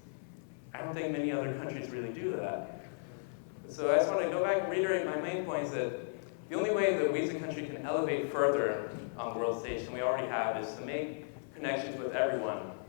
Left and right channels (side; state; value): right; silent; 54 dB below the other